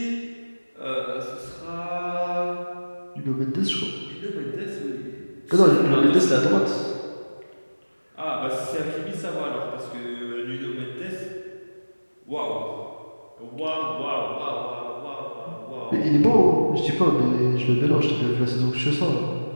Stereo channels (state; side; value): inverted; both; correlation -1.00